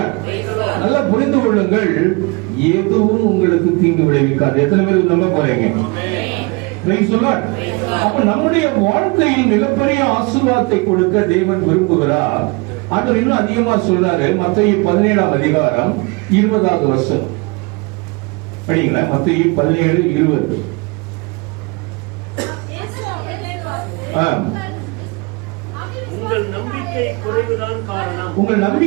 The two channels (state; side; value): quieter; left; 27.8 dB